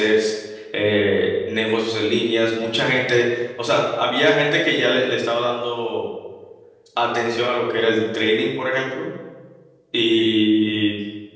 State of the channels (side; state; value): both; identical; correlation 1.00